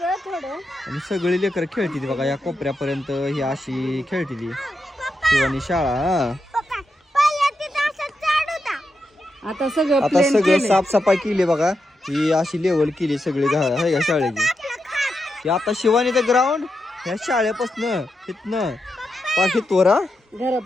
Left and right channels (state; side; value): normal; both; correlation 0.86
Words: थोडं आणि सगळी लेकर खेळती ती बघा. या कोपऱ्यापर्यंत ही अशी खेळती ती शिवानी शाळा. हा आता आता सगळं साफसफाई केली बघा. ही अशी लेवल केली सगळी आहे का शाळेची. ही आता शिवानीचं ग्राउंड ह्या शाळेपासनं इथनं पाठीतवर